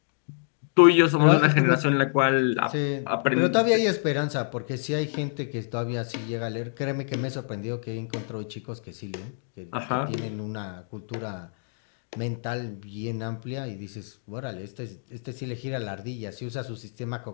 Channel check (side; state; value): right; silent; digital silence